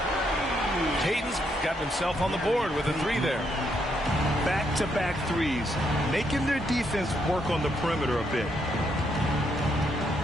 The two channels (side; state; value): both; normal; correlation 0.76